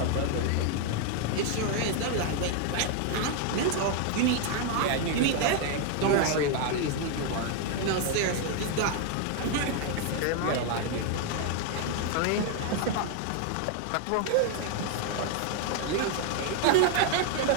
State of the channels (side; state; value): both; different; correlation 0.00